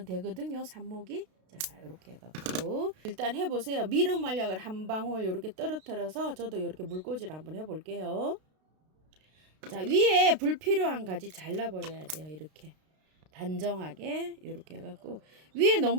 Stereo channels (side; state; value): left; late; 32 ms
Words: 되거든요, 삽목이. 자, 이렇게 해갖고 일단 해보세요. 미름 만약을 한 방울 이렇게 떨어뜨려서 저도 이렇게 물꽂이를 한번 해볼게요. 자, 위에 불필요한 가지 잘라버려야 돼요. 이렇게 단정하게 이렇게 해갖고 위에